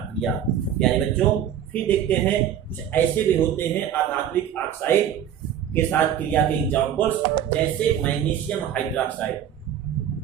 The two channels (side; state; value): left; quieter; 9.8 dB